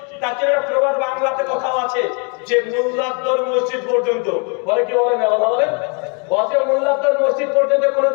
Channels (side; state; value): right; quieter; 35.8 dB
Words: তার জন্য একটা প্রবাদ বাংলাতে কথাও আছে যে মোল্লাদ্দর মসজিদ পর্যন্ত, বলে কি বলে না কথা বলেন? বলছে মোল্লাদ্দর মসজিদ পর্যন্ত